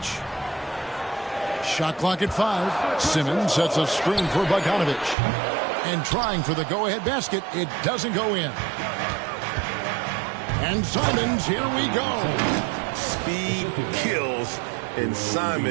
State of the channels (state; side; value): drops out; left; at 5.2 s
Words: Shot clock at 5. Simmons sets a screen for Bogdanovic. And trying for the go-ahead basket, it doesn't go in. And Simons, here we go. Speed kills, and